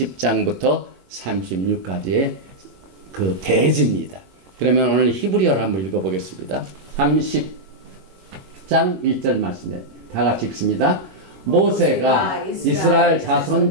36까지의 그 대지입니다. 그러면 오늘 히브리어를 한번 읽어보겠습니다. 30장 1절 말씀에 다 같이 읽습니다. 모세가 이스라엘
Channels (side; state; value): left; late; 22 ms